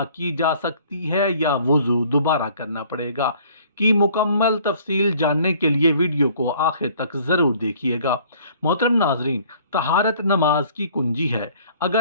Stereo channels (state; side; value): inverted; both; correlation -0.56